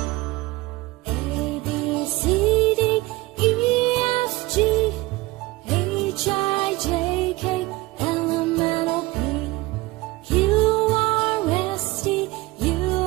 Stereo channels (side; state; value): left; quieter; 20.6 dB